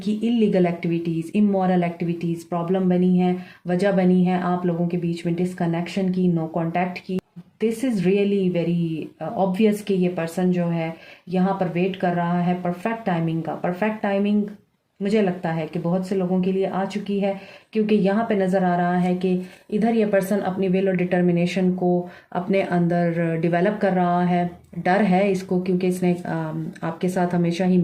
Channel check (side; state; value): both; identical; correlation 1.00